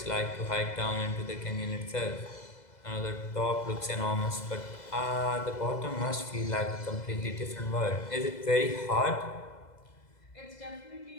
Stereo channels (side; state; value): right; late; 2.0 ms